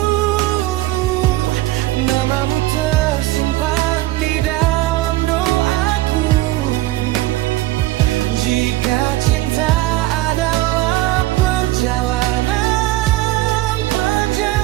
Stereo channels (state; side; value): quieter; left; 17.2 dB